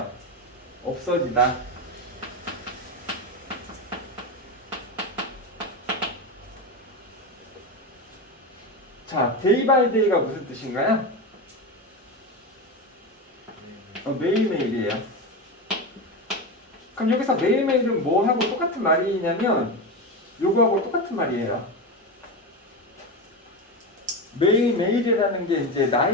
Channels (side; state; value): both; normal; correlation 0.18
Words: 없어지다. 자, day by day가 무슨 뜻인가요? 매일매일이에요. 그럼 여기서 매일매일은 뭐하고 똑같은 말이냐면 요거하고 똑같은 말이에요. 매일매일이라는 게 이제